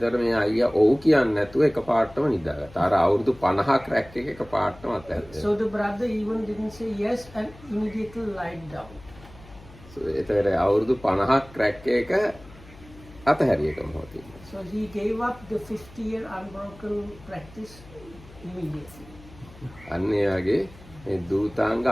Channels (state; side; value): noise; left; hum, 21 dB below the sound